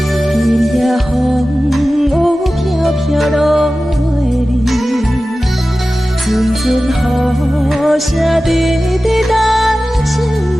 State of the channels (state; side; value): normal; both; correlation 0.95